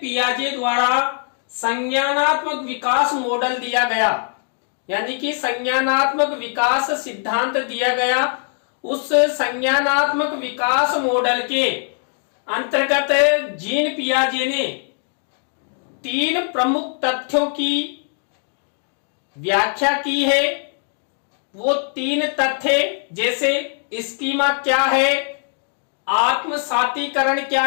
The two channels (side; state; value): right; silent; 56 dB below the other